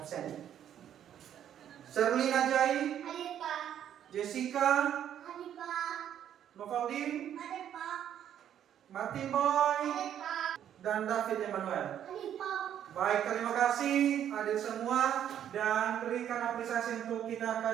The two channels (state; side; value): quieter; left; 10.1 dB